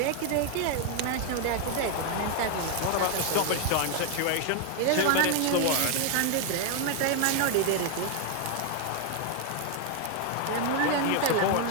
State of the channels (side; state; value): both; different; correlation 0.01